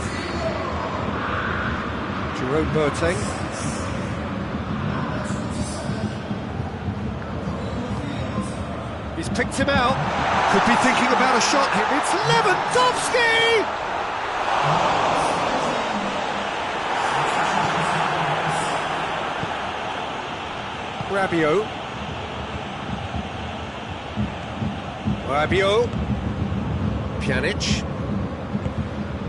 Jerome Boateng. He's picked him out. Could be thinking about a shot here. It's Lewandowski! Rabiot. Rabiot, Pjanic,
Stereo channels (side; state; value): both; identical; correlation 1.00